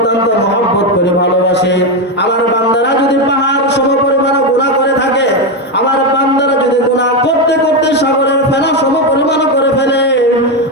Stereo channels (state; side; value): normal; both; correlation 0.09